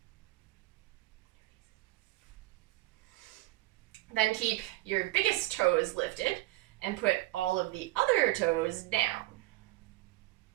Then keep your biggest toes lifted and put all of the other toes down.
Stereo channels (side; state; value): left; quieter; 18.2 dB